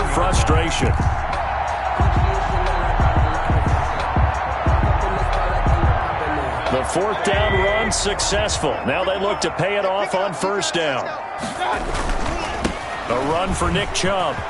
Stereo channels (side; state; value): both; identical; correlation 1.00